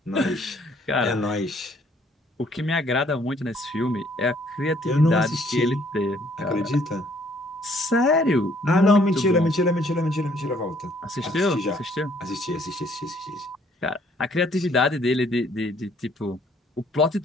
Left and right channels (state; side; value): normal; both; correlation 0.63